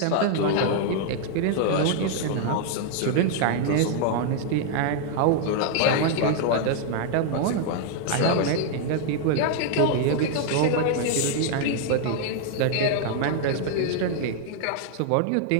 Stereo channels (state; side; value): different; both; correlation 0.00